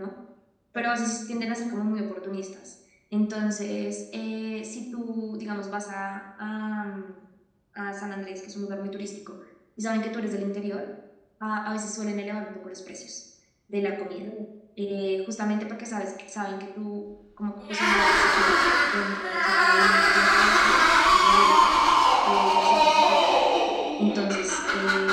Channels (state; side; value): identical; both; correlation 1.00